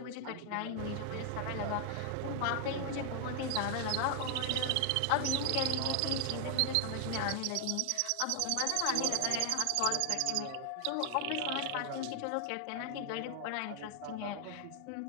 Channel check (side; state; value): both; different; correlation 0.00